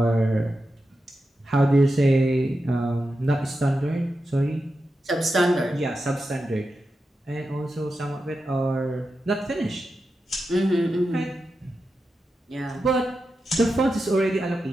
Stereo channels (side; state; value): both; normal; correlation 0.90